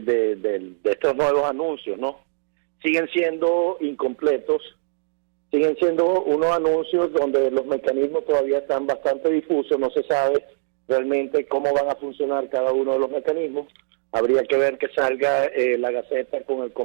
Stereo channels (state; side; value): silent; left; digital silence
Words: estos nuevos anuncios, ¿no? Siguen siendo incompletos, siguen siendo unos anuncios donde los mecanismos todavía están bastante difusos, no se sabe realmente cómo van a funcionar cada uno de los mecanismos. Habría que ver que salga la Gaceta con el